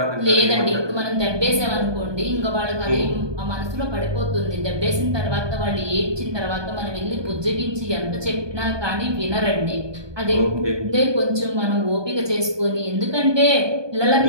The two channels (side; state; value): left; late; 1.2 ms